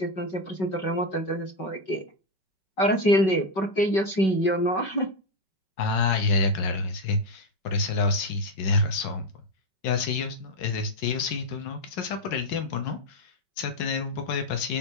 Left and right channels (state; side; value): late; right; 5.3 ms